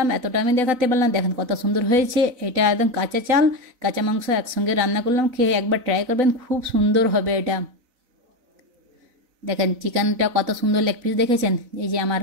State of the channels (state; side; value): late; left; 4.0 ms